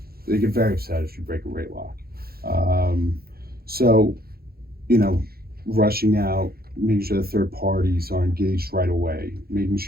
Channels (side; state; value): left; late; 0.44 ms